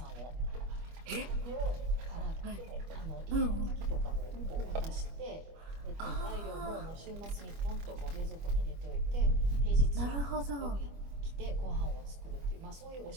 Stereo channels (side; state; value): left; late; 25 ms